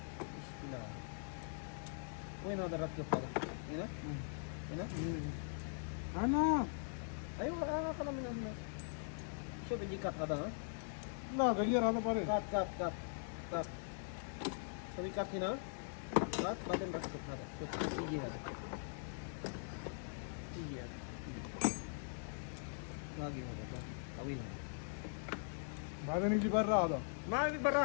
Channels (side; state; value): right; silent; digital silence